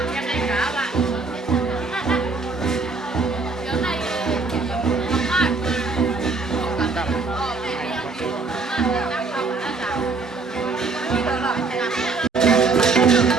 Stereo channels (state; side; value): quieter; left; 4.2 dB